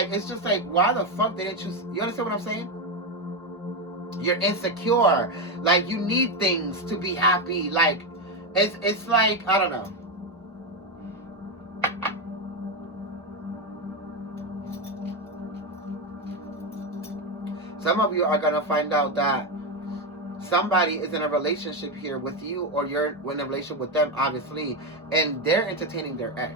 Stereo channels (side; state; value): both; normal; correlation 0.10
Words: it's just like, why the fuck didn't you understand what I'm saying? You're insecure. Like, you need things to be happy. Like, it's like, I don't know. Some of you are going to find out that somebody is in a relationship here with you, or you're in a relationship with them, obviously, and they're entertaining their